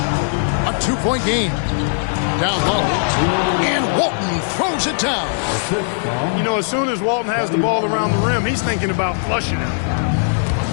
A 2-point game. Down low. And Walton throws it down. You know, as soon as Walton has the ball around the rim, he's thinking about flushing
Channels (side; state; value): right; silent; 67 dB below the other